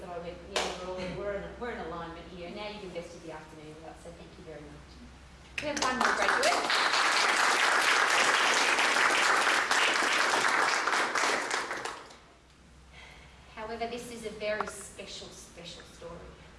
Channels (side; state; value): both; identical; correlation 1.00